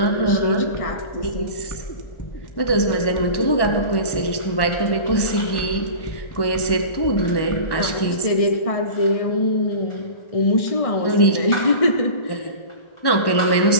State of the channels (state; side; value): late; right; 1.1 ms